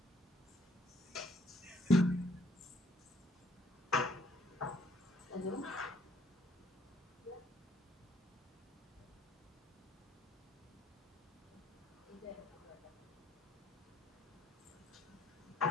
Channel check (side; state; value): both; normal; correlation 0.65